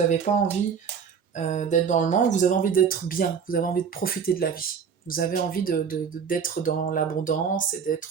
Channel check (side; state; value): left; quieter; 6.7 dB